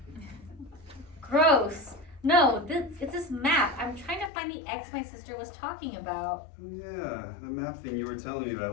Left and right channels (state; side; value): drops out; right; at 4.3 s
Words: Gross. No, it's this map. I'm trying to find the X my sister was talking about. Yeah, the map thing you were telling me